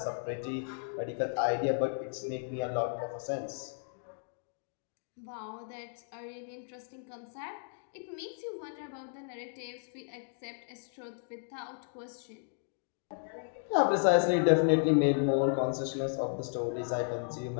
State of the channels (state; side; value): silent; right; digital silence